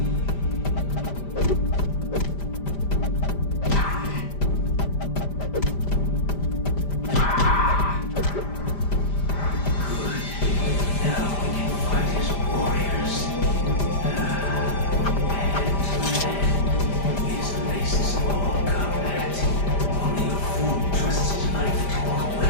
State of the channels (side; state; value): right; late; 5.0 ms